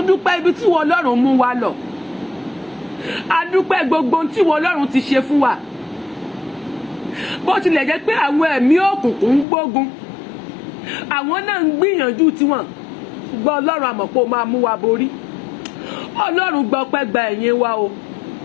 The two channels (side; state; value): right; drops out; at 9.5 s